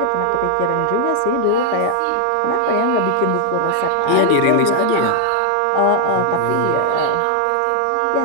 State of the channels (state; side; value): different; both; correlation 0.00